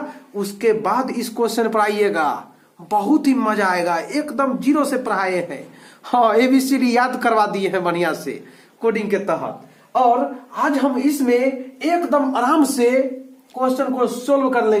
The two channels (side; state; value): both; identical; correlation 1.00